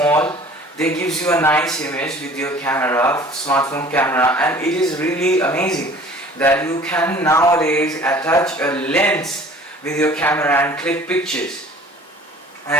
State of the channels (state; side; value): normal; both; correlation 0.48